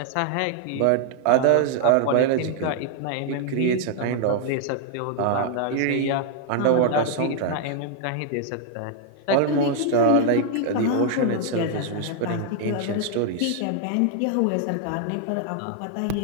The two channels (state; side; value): different; both; correlation 0.00